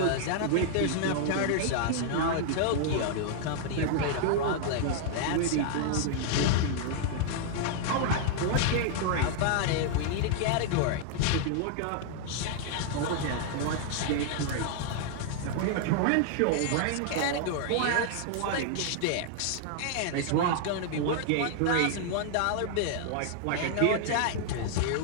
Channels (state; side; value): different; both; correlation 0.00